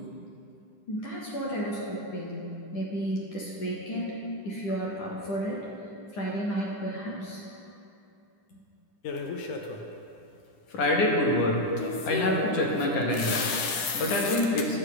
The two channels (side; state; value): right; late; 10 ms